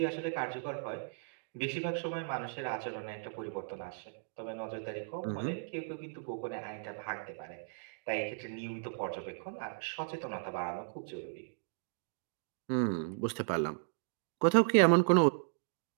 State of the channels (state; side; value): silent; left; digital silence